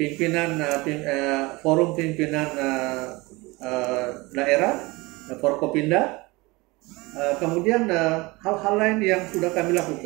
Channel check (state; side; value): quieter; left; 23.4 dB